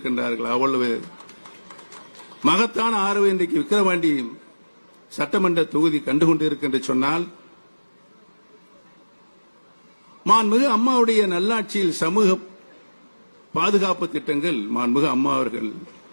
அவ்வளவு மகத்தான ஆர்வம் இன்றைக்கு விக்கிரவாண்டி சட்டமன்ற தொகுதி கண்டுகொண்டிருக்கின்ற சொன்னால், மாண்புமிகு அம்மாவுடைய நல்லாட்சியில் சமூக பாதுகாப்பு திட்டங்கள் மாண்புமிகு அம்மா அவர்கள்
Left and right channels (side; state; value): both; inverted; correlation -1.00